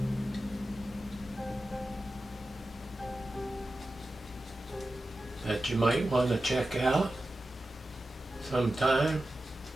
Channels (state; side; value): normal; both; correlation 0.93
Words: That you might want to check out sometime.